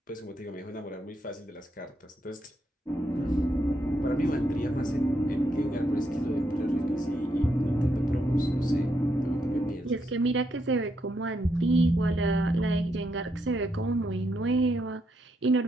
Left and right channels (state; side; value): normal; both; correlation 0.79